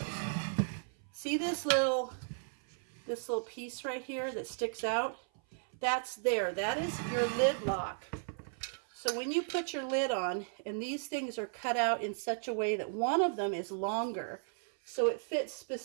See this little piece right here that sticks out? That's there. That is your lid lock. So when you put your lid on, and these things are cut out in such a way that one of them is longer, so it fits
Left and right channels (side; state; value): left; silent; 54 dB below the other